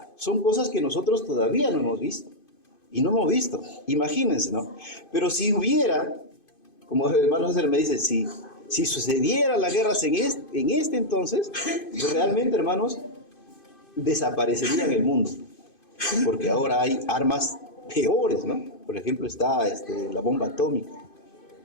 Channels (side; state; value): right; late; 2.5 ms